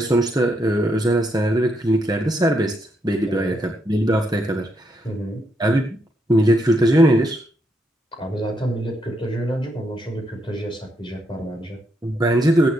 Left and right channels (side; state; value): both; normal; correlation 0.78